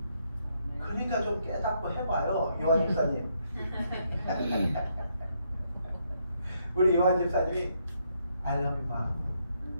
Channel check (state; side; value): inverted; both; correlation -0.75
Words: 그러니까 좀 깨닫고 해봐요, 요한 집사님. 우리 요한 집사님이 I love you mom.